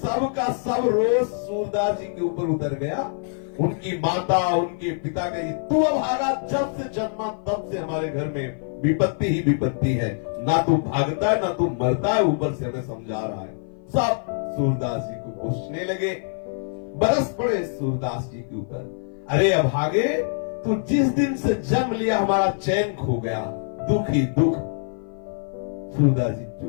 का सब रोज सूरदास जी के ऊपर उतर गया। उनकी माता, उनके पिता कही, तू अभागा, जब से जन्मा तब से हमारे घर में विपत्ति ही विपत्ति है। ना तू भागता है, ना तू मरता है, ऊपर से हमें समझा रहा है। सब सूरदास जी को पूछने लगे, बरस पड़े सूरदास जी के ऊपर। अरे अभागे, तू जिस दिन से जन्म लिया हमारा चैन खो गया, दुख ही दुख। सूरदास जी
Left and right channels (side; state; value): right; silent; 55 dB below the other